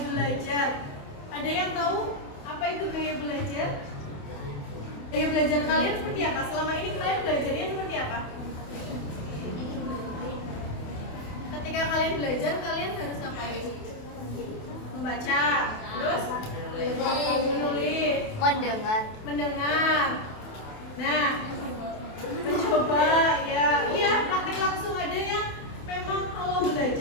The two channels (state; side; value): late; right; 28 ms